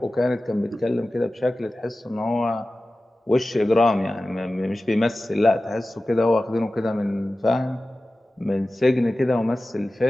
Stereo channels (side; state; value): both; normal; correlation 0.96